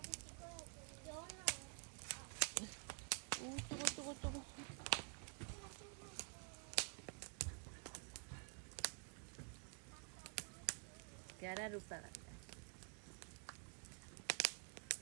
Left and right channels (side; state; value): left; quieter; 38.6 dB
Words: 찍어야 돼. 연아. 오, 뜨거. 갸라루빠 같다.